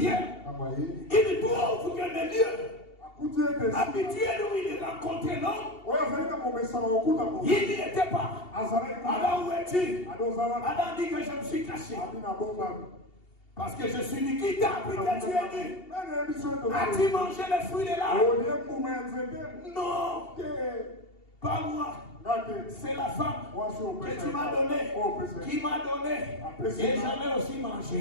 il trouve que le lieu habitué où il rencontrait l'homme, il n'y était pas. Alors où es-tu? Adam dit que je me suis caché. Parce que je suis nu. Qui t'a appris que tu es nu? As-tu mangé les fruits de l'arbre? Non, pas moi. C'est la femme que tu m'as donnée, qui m'a donné. Et j'en ai aussi mangé.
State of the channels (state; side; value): late; right; 2.7 ms